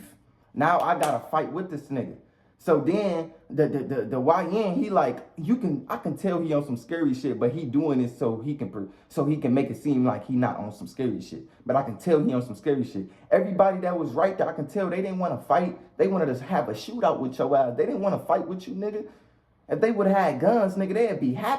Now I gotta fight with this nigga. So then the YN, he like, I can tell he on some scary shit, but he doing it so he can make it seem like he not on some scary shit. But I can tell he on some scary shit. Everybody that was right there, I can tell they didn't want to fight. They wanted to have a shootout with your ass. They didn't want to fight with you, nigga. If they would have had guns, nigga, they'd be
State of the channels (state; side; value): identical; both; correlation 1.00